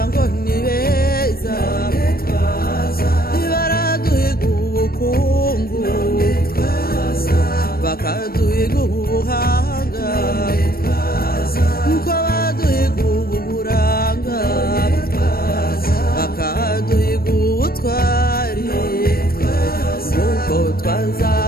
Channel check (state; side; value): late; right; 0.44 ms